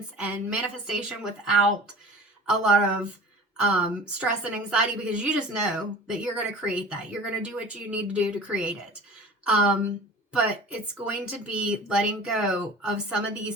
and manifestation without a lot of stress and anxiety, because you just know that you're going to create that. You're going to do what you need to do to create it. But it's going to be letting go of some of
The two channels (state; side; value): normal; both; correlation 0.39